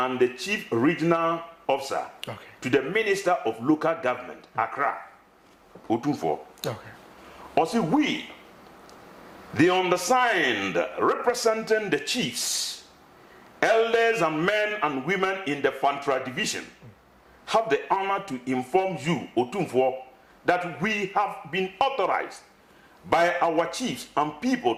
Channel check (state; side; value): identical; both; correlation 1.00